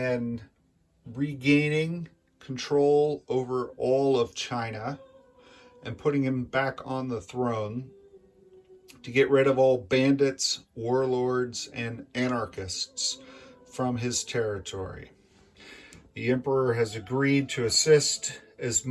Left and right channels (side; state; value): both; identical; correlation 1.00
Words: regaining control over all of China and putting him back on the throne to get rid of all bandits, warlords, and anarchists from his territory. The emperor has agreed to assist as